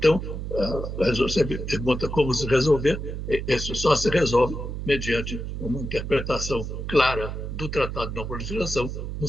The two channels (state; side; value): noise; right; hum, 5 dB below the sound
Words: você me pergunta como se resolver, isso só se resolve mediante uma interpretação clara do Tratado de Não Proliferação, no